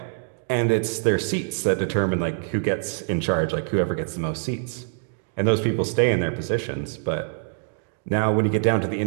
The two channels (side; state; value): left; silent; digital silence